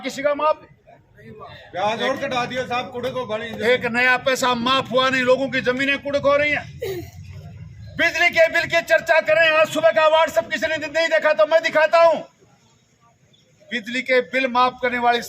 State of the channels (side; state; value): both; identical; correlation 1.00